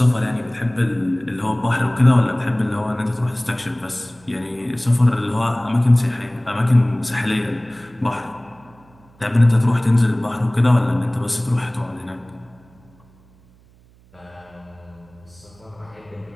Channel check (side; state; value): right; noise; hum, 29 dB below the sound